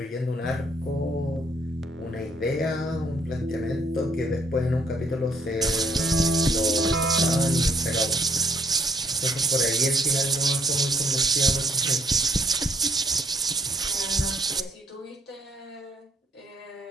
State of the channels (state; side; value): normal; both; correlation 0.68